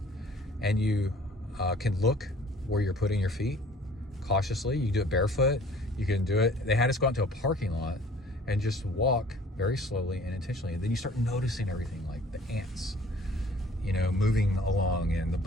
and you can look where you're putting your feet cautiously. You do it barefoot. You can do it. They had us go out to a parking lot and just walk very slowly and intentionally. And then you start noticing everything, like the ants, you know, moving along, and the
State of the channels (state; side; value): normal; both; correlation 0.52